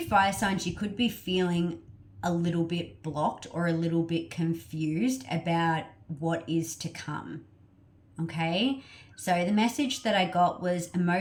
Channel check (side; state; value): both; identical; correlation 1.00